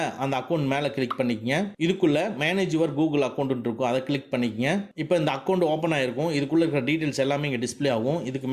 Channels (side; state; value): both; identical; correlation 1.00